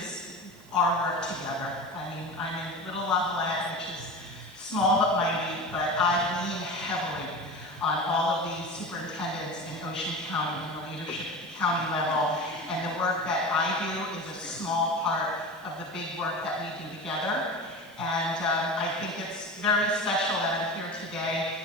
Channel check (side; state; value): right; noise; hiss, 28 dB below the sound